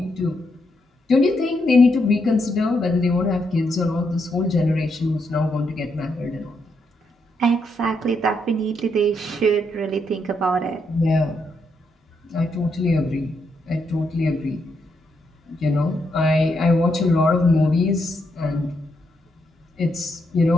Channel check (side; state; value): both; normal; correlation 0.79